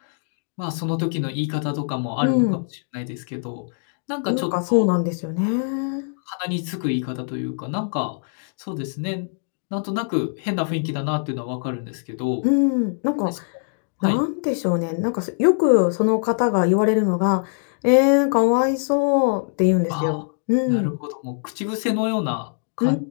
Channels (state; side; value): silent; right; digital silence